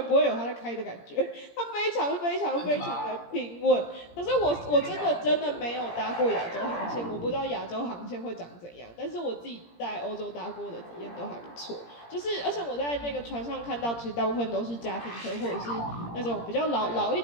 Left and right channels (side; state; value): right; late; 17 ms